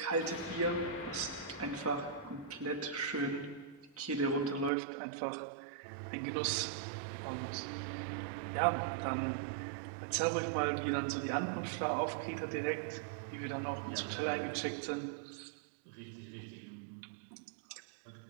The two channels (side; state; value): left; drops out; at 4.7 s